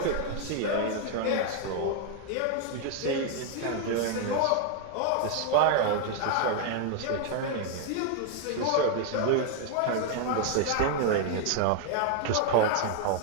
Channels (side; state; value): both; different; correlation 0.00